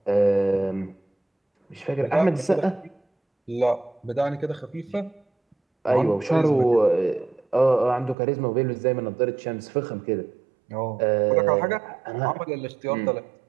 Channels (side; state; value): left; drops out; at 8.2 s